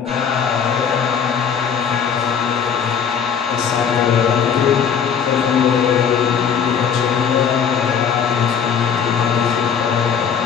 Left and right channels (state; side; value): quieter; right; 7.3 dB